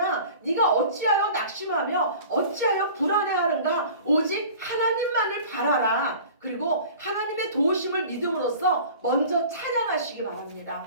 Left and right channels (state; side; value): inverted; both; correlation -0.43